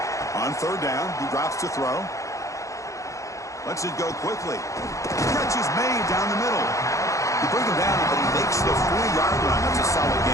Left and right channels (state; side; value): late; right; 0.15 ms